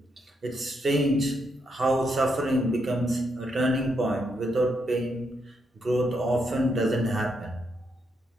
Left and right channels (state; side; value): normal; both; correlation 0.79